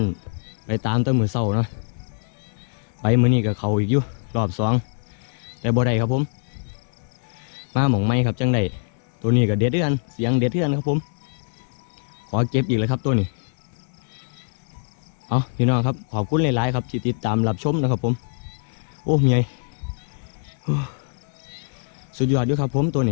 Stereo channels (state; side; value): silent; right; 63 dB below the other